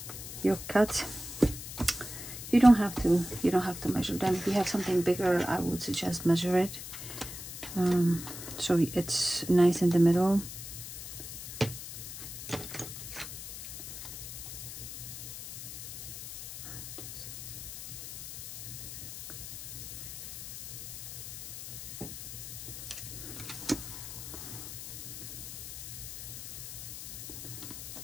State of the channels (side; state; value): left; noise; hiss, 9 dB below the sound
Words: your cuts, you don't have to measure them. If you have something bigger, I would suggest measure it, so it's nice in the middle.